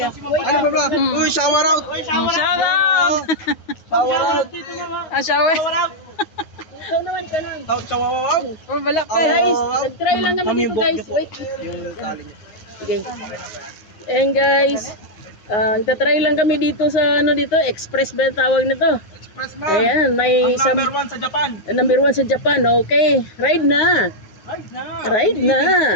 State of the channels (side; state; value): right; late; 9.5 ms